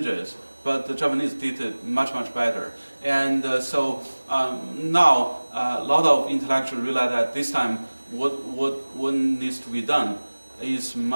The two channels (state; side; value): inverted; both; correlation -1.00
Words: but the Japanese did it much, much better. And so now a lot of intellectuals realize that this time what needs to be done is